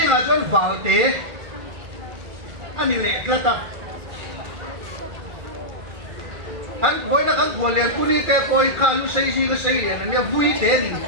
là chọn vào thế anh lệ cái ta anh với nó anh vừa liền tu đi cái coi khá lúc xây riêng cái xây liền anh vui thế thì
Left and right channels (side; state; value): left; late; 2.3 ms